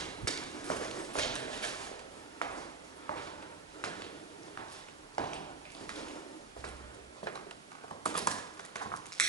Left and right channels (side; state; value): left; quieter; 4.2 dB